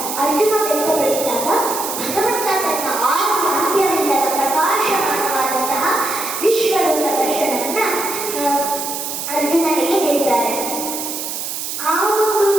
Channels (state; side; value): noise; right; hiss, 5 dB below the sound